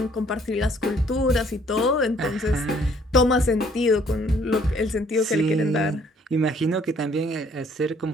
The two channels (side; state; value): both; normal; correlation 0.62